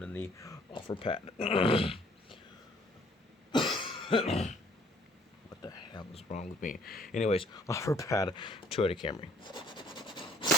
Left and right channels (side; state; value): both; normal; correlation 0.59